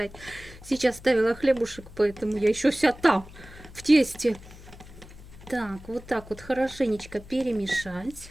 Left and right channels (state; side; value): noise; left; hum, 18 dB below the sound